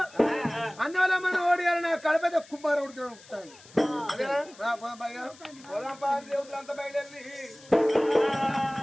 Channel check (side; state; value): left; noise; hiss, 22 dB below the sound